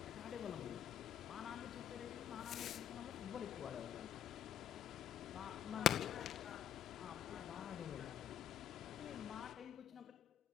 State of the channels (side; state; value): right; quieter; 9.6 dB